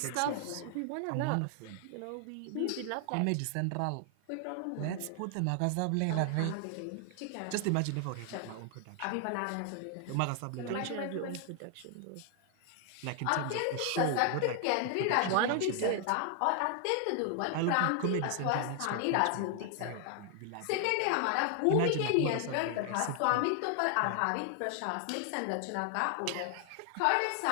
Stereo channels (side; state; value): both; different; correlation 0.00